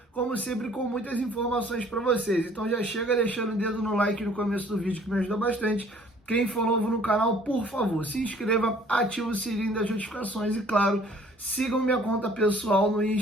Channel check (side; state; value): both; normal; correlation 0.56